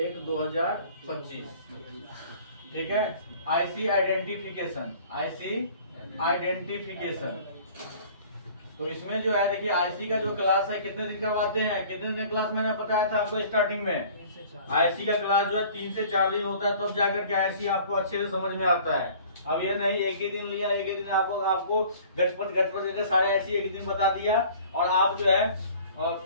ठीक है। आईसी आइडेंटिफिकेशन, तो इसमें जो है देखिए आईसी का जो क्लास है कितने दिन का बताते हैं? कितने दिन क्लास मैंने बताया था आपको स्टार्टिंग में? आईसी का क्लास जो है 3 से 4 दिन होता है, तब जाकर के आईसी आपको अच्छे से समझ में आता है। अब ये नहीं एक ही दिन लिया, एक ही दिन आपको गटपट करके सारे आईसी एक दिन बता दिया और आप जो है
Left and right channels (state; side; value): inverted; both; correlation -0.49